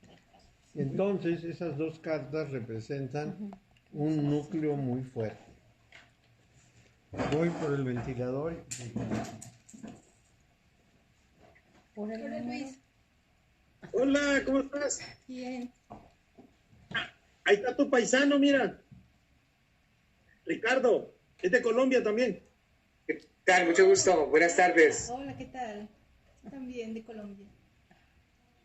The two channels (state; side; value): identical; both; correlation 1.00